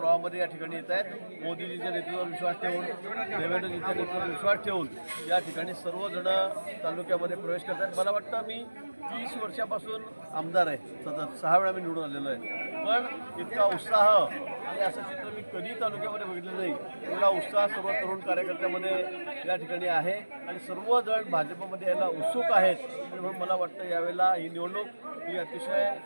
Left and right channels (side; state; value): both; inverted; correlation -1.00